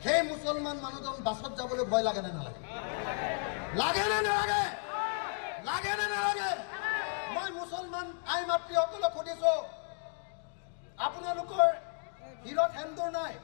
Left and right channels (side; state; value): right; silent; 55 dB below the other